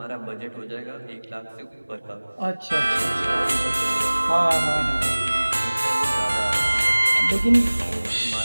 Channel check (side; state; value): both; inverted; correlation -1.00